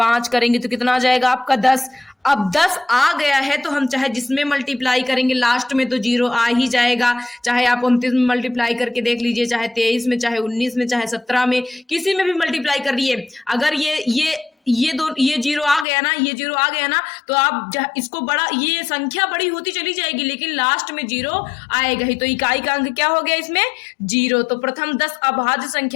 करेंगे तो कितना आ जाएगा आपका 10। अब 10 आ गया है तो हम चाहे जिसमें मल्टीप्लाई करेंगे लास्ट में तो 0 आ ही जाएगा। चाहे आप 29 में मल्टीप्लाई करके देख लीजिए, चाहे 23 में, चाहे 19 में, चाहे 17 में, किसी में भी मल्टीप्लाई कर लिए। अगर ये 0 आ गया ना, ये 0 आ गया ना, तो आप इसको बड़ा, ये संख्या बड़ी होती चली जाएगी लेकिन लास्ट में 0 आएगा ही। तो इकाई का अंक क्या हो गया इसमें 0। तो प्रथम 10 अभाज्य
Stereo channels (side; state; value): right; drops out; at 15.9 s